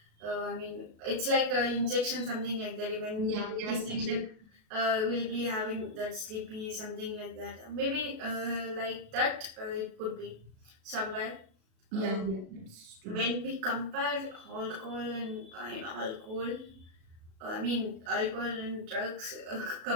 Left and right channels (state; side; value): late; left; 37 ms